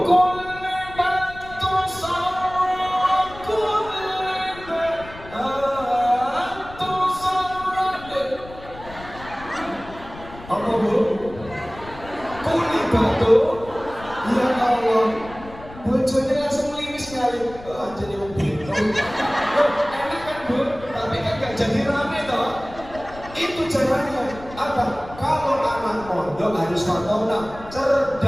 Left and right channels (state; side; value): noise; left; rumble, 17 dB below the sound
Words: apa Bu? Kuli batu. Ya Allah, bojone langsung liwis sekali. Jadi mobil. Enak kan Bu? Tapi kan gak jadi rame toh. Itu caranya. Apa? Kalau anak mondok harus fatona,